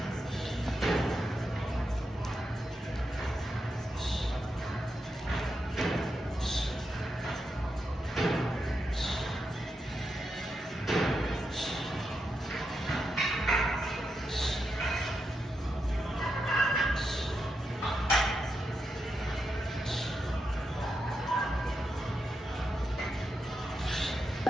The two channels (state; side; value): normal; both; correlation 0.85